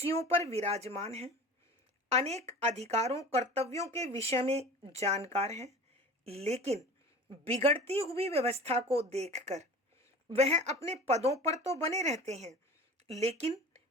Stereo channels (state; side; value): normal; both; correlation 0.38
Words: पर विराजमान है, अनेक अधिकारों कर्तव्यों के विषय में जानकार है, लेकिन बिगड़ती हुई व्यवस्था को देखकर वह अपने पदों पर तो बने रहते हैं, लेकिन